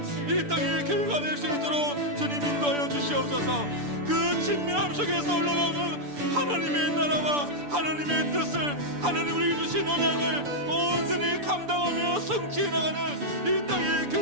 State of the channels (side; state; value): left; late; 6.9 ms